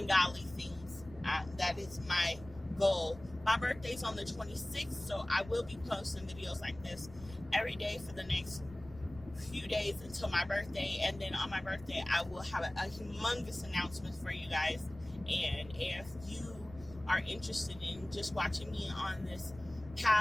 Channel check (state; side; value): noise; left; rumble, 18 dB below the sound